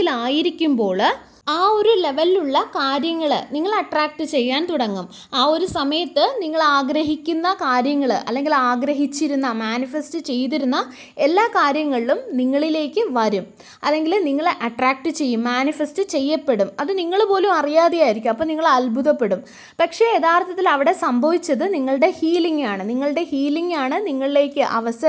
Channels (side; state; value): both; identical; correlation 1.00